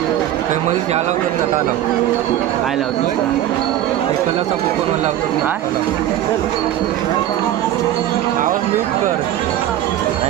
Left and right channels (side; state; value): left; quieter; 12.5 dB